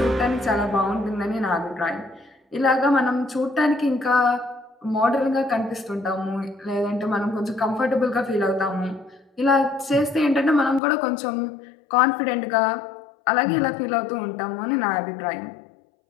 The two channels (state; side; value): drops out; right; at 10.8 s